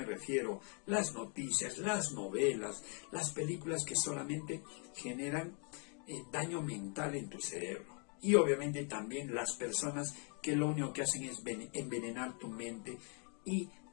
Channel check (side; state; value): right; quieter; 38.7 dB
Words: refiero: las noticias, las novelas, las películas que solamente generan daño mental en tu cerebro. Y obviamente también las personas que lo único que hacen es envenenar tu mente y